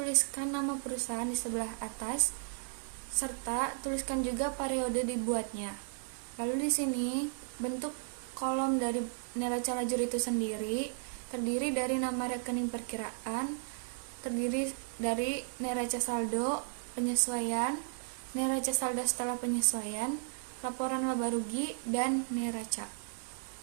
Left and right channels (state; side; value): silent; left; digital silence